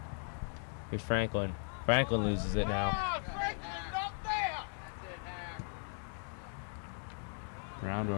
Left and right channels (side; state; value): right; silent; 53 dB below the other